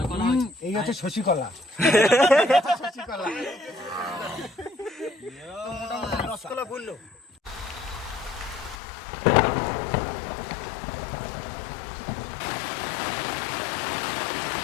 এই হচ্ছে শশী কলা। শশীকলা মোটামুটি রসকলা বললো।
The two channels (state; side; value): drops out; right; at 8.8 s